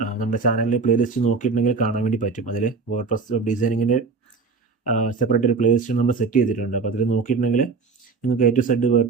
നമ്മുടെ ചാനലിൽ പ്ലേലിസ്റ്റ് നോക്കിയിട്ടുണ്ടെങ്കിൽ കാണാൻ വേണ്ടി പറ്റും. അതിൽ വേർഡ്പ്രസ് വെബ് ഡിസൈനിങ്ങിൻ്റെ സെപ്പറേറ്റ് ഒരു പ്ലേലിസ്റ്റ് നമ്മൾ സെറ്റ് ചെയ്തിട്ടുണ്ട്. അപ്പോൾ അതിൽ നോക്കിയിട്ടുണ്ടെങ്കിൽ നിങ്ങൾക്ക് A to Z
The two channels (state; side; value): quieter; left; 4.5 dB